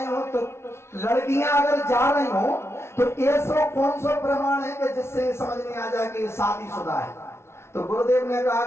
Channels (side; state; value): right; late; 0.13 ms